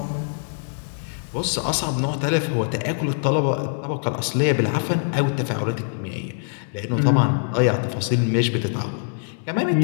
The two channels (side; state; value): right; silent; 58 dB below the other